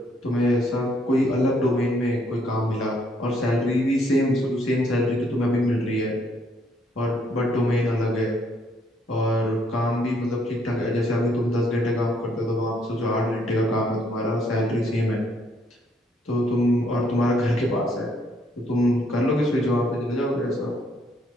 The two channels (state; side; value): normal; both; correlation 0.69